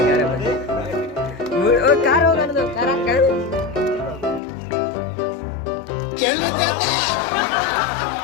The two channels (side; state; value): right; drops out; at 4.4 s